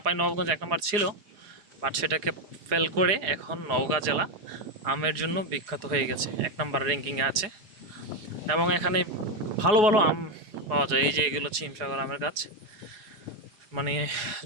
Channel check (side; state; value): left; late; 4.8 ms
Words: নবাবগঞ্জ 1 নম্বর ছিল, বাট সেটাকে ফেল করে এখন নওগাঁ জেলা আমের জন্য বিখ্যাত হয়ে গেছে, 1 নম্বর র্যাঙ্কিংয়ে আছে। এবং এখানে ভালো ভালো আম পাওয়া যায়। এই যে এগুলো হচ্ছে হিমসাগর আমের গাছ। মানে